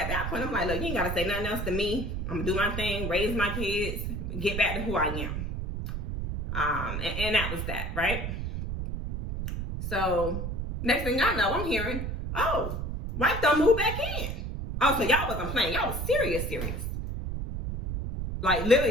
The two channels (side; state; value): right; noise; rumble, 4 dB below the sound